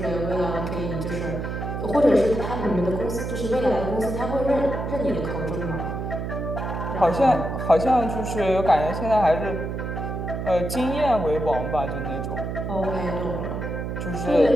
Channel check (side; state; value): right; noise; hum, 4 dB below the sound